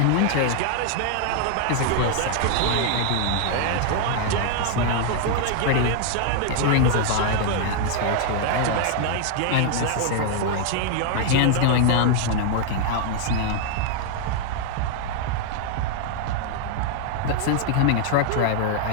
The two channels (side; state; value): both; different; correlation 0.00